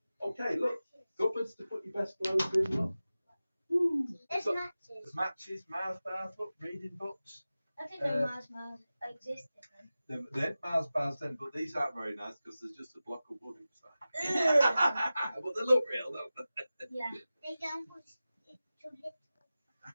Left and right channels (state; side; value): inverted; both; correlation -0.96